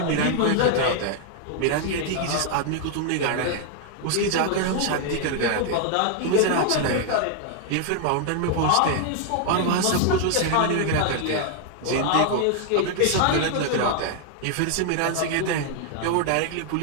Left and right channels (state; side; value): different; both; correlation 0.00